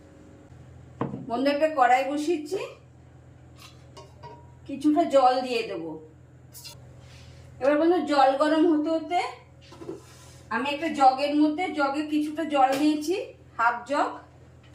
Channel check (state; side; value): identical; both; correlation 1.00